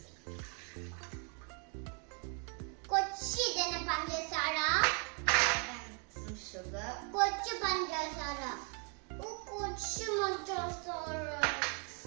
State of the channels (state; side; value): quieter; left; 37.1 dB